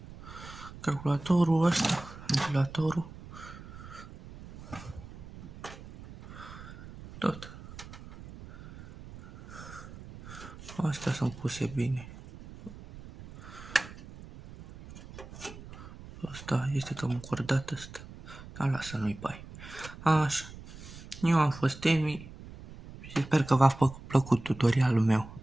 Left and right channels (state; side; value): noise; right; rumble, 15 dB below the sound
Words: Calculatorul ăsta, ventilatorul. Tot. Astea sunt puse bine. Asta este cam încordat ăsta. Dar lasă, nu-i bai. Așa. Eu am fost Emi și sper că v-a plăcut tutorialul meu.